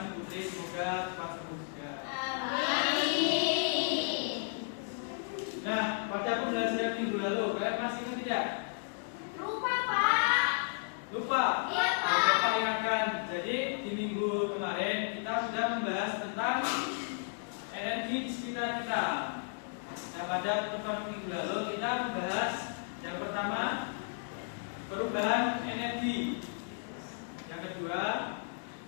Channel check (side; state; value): right; silent; digital silence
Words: si Putri semoga cepat surut juga. Amin. Nah pada pembelajaran minggu lalu kalian masih ingat tidak? Lupa, Pak. Lupa? Iya, Pak. Bapak ingatkan. Jadi di minggu kemarin kita sudah membahas tentang energi di sekitar kita. Nah pada pertemuan minggu lalu kita membahas yang pertama perubahan energi, yang kedua